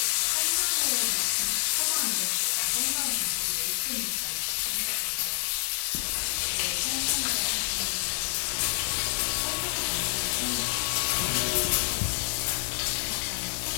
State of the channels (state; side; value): silent; right; digital silence